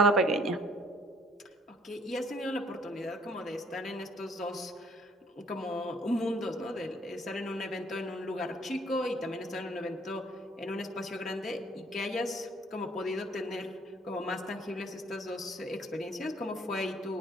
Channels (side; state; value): both; normal; correlation 0.61